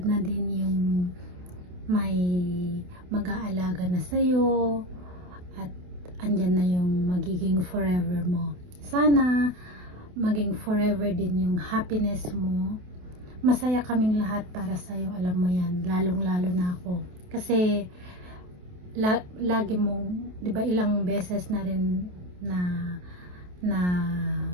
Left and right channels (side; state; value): left; late; 28 ms